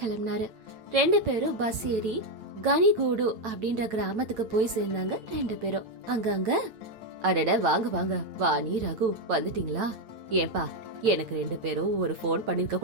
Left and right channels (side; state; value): left; late; 9.0 ms